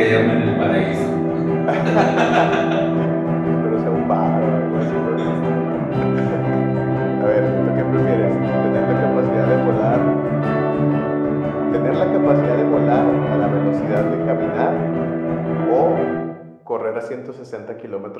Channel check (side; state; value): both; identical; correlation 1.00